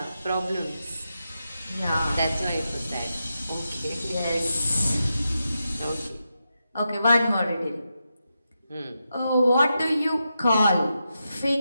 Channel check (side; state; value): both; inverted; correlation -0.88